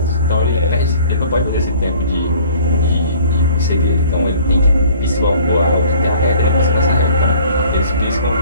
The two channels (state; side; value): inverted; both; correlation -0.51